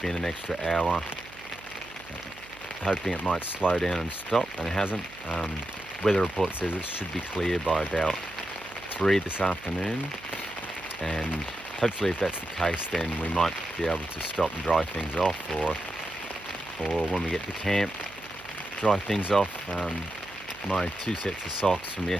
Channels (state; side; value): noise; right; hum, 21 dB below the sound